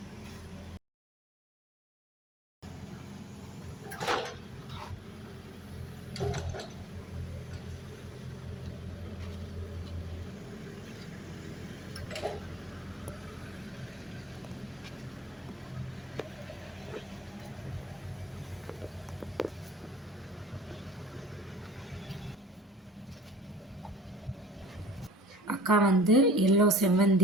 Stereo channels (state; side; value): normal; both; correlation 0.46